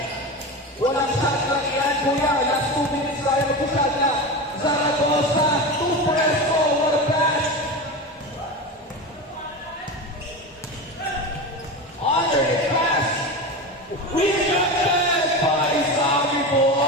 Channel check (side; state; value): both; normal; correlation 0.24